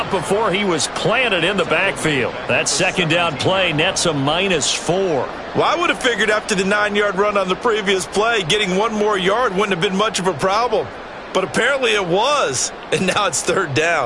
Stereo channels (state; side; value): identical; both; correlation 1.00